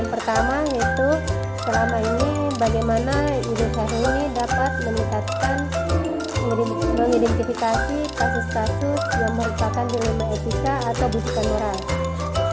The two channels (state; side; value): identical; both; correlation 1.00